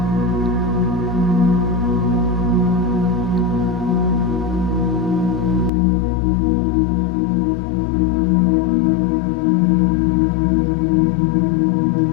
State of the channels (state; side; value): drops out; right; at 5.7 s